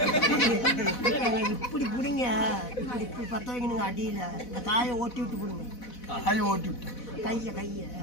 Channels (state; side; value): late; right; 4.1 ms